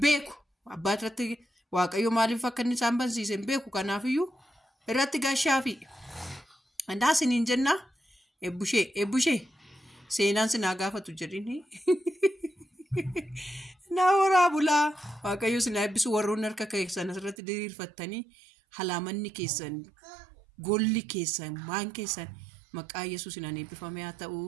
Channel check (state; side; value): drops out; left; at 17.4 s